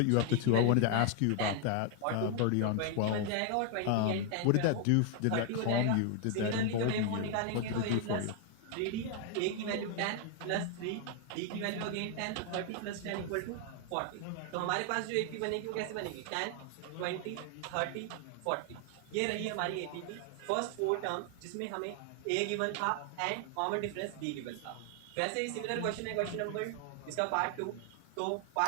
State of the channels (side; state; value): both; different; correlation 0.00